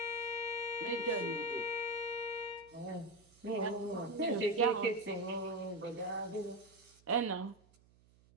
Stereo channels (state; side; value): noise; right; hum, 29 dB below the sound